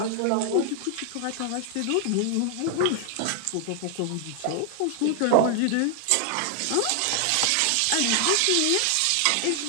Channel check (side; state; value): both; different; correlation 0.00